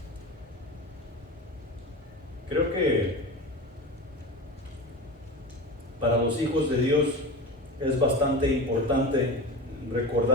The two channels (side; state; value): both; normal; correlation 0.27